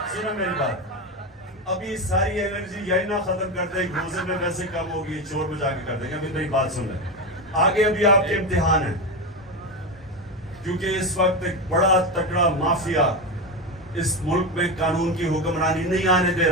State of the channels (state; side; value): normal; both; correlation 0.17